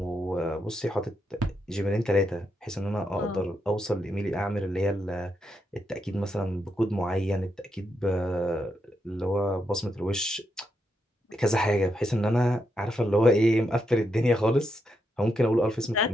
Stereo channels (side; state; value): both; normal; correlation 0.82